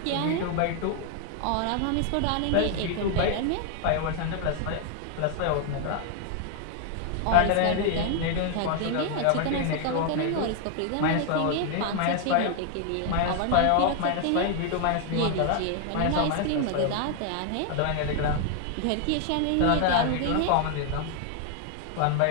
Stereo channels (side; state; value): both; different; correlation 0.00